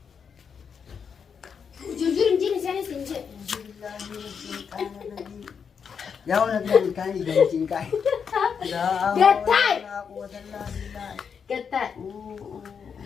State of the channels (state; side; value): quieter; right; 6.6 dB